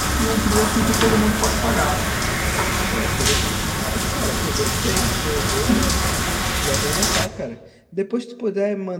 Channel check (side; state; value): both; identical; correlation 1.00